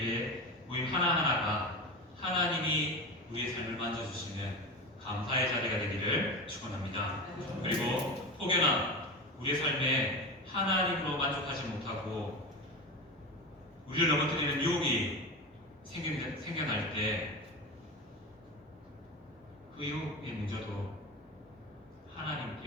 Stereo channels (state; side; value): normal; both; correlation 0.25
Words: 모임 하나하나가 하나님이 우리의 삶을 만져주시는 감사의 자리가 되기를 축원합니다. 그리고 혹여나 우리의 삶에 하나님으로 만족하지 못하고 우리를 넘어뜨리는 유혹이 생겨날 때 그 유혹의 문제도